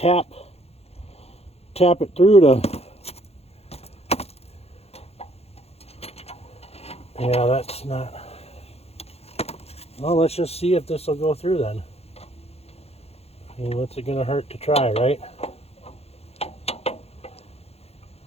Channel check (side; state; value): right; late; 0.30 ms